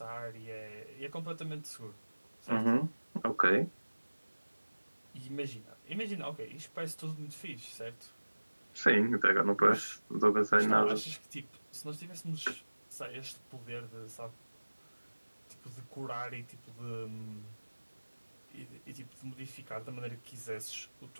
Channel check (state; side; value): inverted; both; correlation -1.00